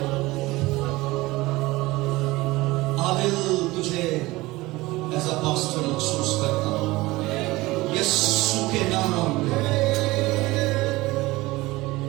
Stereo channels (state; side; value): quieter; left; 20.1 dB